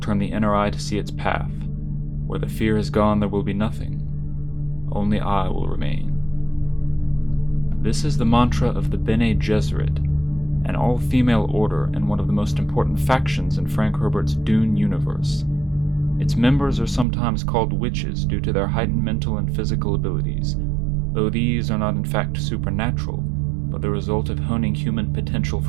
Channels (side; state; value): left; drops out; at 17.1 s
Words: the inner eye to see its path. Where the fear is gone there will be nothing. Only I will remain. This is the mantra of the Bene Gesserit, an all-female order and one of the most important factions in Frank Herbert's Dune Universe. Its members are sometimes called witches due to their heightened mental and physical abilities, though these are not in fact supernatural, but the result of honing human potential